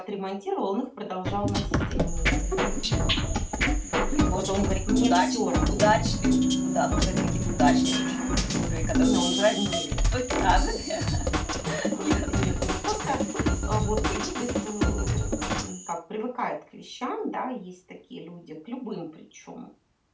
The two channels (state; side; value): identical; both; correlation 1.00